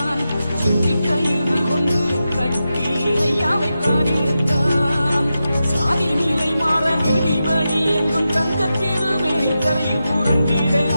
சுற்றி கயிறு கொண்டு கட்டி ஐயாவை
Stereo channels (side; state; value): both; inverted; correlation -0.90